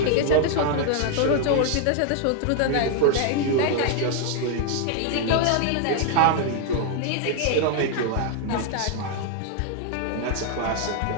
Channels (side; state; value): both; different; correlation 0.00